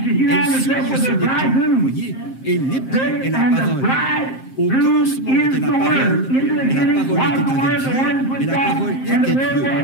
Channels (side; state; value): right; late; 7.6 ms